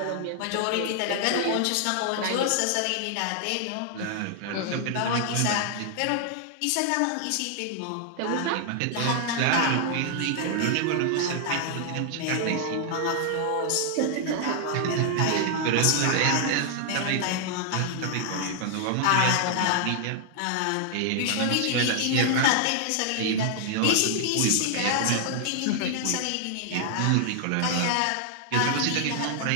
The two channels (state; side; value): different; both; correlation 0.00